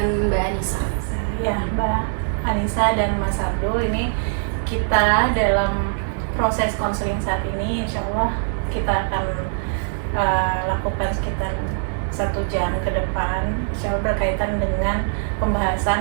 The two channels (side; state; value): left; silent; digital silence